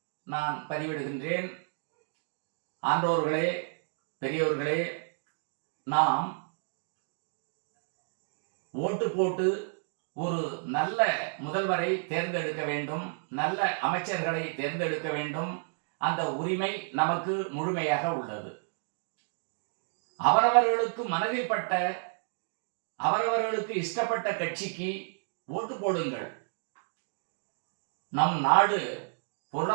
நான் பதிவிடுகின்றேன். ஆண்டோர்களே, பெரியோர்களே, நாம் ஓட்டு போட்டு ஒரு நல்ல முதல்வரை தேர்ந்தெடுக்க வேண்டும், நல்ல அமைச்சர்களை தேர்ந்தெடுக்க வேண்டும். அந்த உரிமை நமக்கு முழுமையாக உள்ளது. அவரவர்களுக்கு மனதில் பட்ட, அவரவர்களுக்கு இஷ்டப்பட்ட கட்சிக்கு ஓட்டு போடுங்கள். நம் நாடு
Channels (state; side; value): silent; left; digital silence